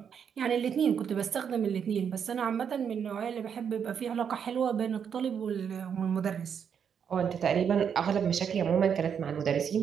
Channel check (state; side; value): quieter; left; 7.5 dB